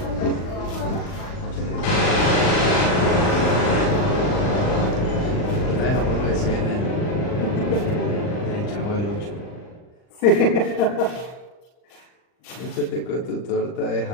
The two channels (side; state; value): right; late; 39 ms